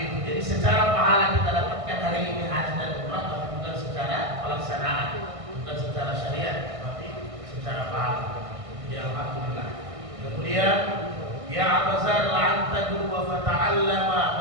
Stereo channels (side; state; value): left; late; 1.6 ms